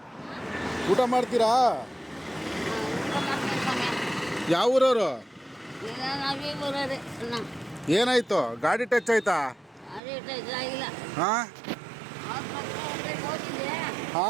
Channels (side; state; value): left; drops out; at 10.0 s